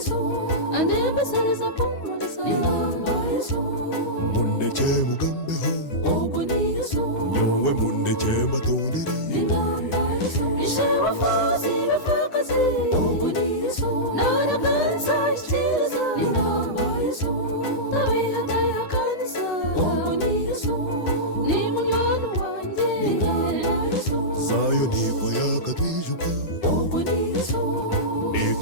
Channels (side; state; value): right; late; 9.8 ms